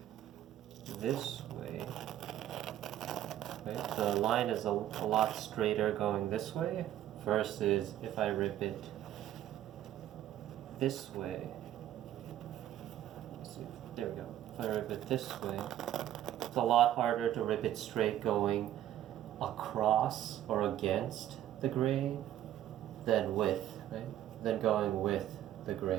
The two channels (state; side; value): quieter; left; 12.3 dB